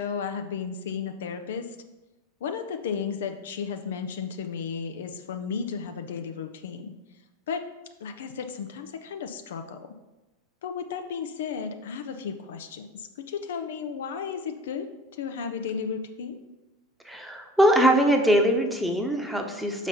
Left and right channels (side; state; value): both; normal; correlation 0.37